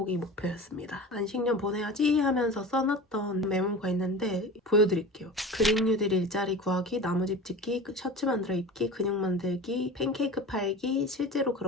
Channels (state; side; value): normal; both; correlation 0.34